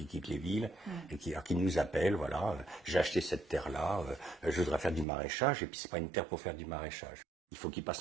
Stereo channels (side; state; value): left; drops out; at 5.1 s